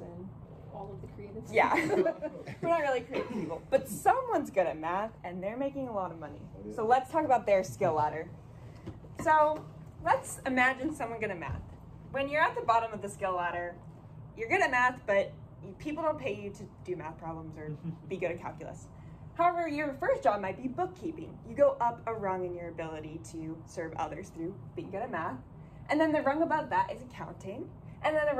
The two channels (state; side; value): identical; both; correlation 1.00